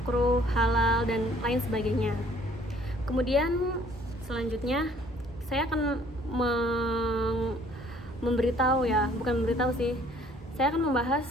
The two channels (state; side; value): normal; both; correlation 0.58